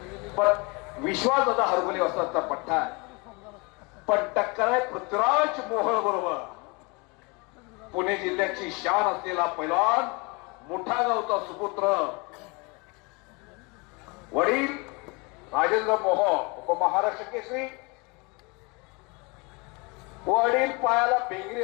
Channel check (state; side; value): quieter; right; 29.0 dB